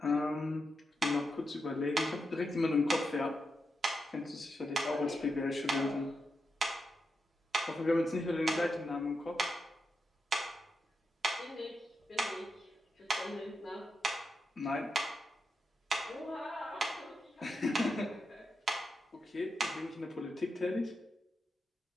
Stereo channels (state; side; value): normal; both; correlation 0.86